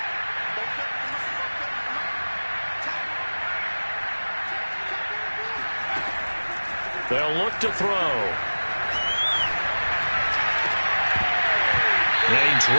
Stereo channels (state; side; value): inverted; both; correlation -1.00